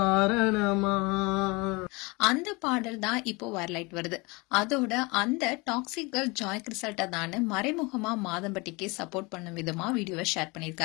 அந்த பாடல் தான் இப்போ வைரலைட் வருது. அதோட அந்த டாக்ஸிக் கேர்ள் ஜாய் கிறிசல்டா தான் மறைமுகமா மாதம்பட்டிக்கு சப்போர்ட் பண்ணும் விதமா வீடியோவை ஷேர்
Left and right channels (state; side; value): quieter; right; 26.4 dB